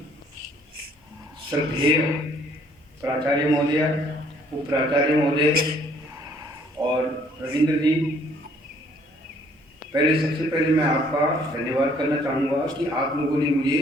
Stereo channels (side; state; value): both; normal; correlation 0.62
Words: श्रद्धेय प्राचार्य महोदय, उप प्राचार्य महोदय और रविंद्र जी, सबसे पहले मैं आपका धन्यवाद करना चाहूँगा कि आप लोगों ने मुझे